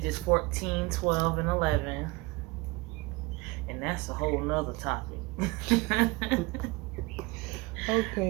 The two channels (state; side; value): quieter; left; 23.0 dB